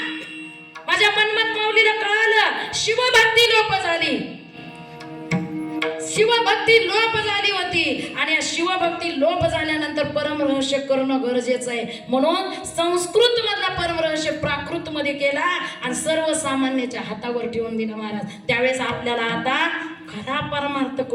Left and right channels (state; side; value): identical; both; correlation 1.00